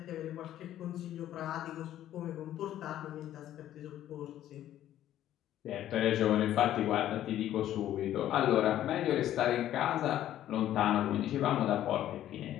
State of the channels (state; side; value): quieter; right; 12.3 dB